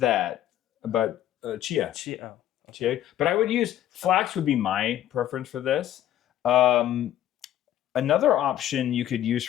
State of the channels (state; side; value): quieter; right; 12.1 dB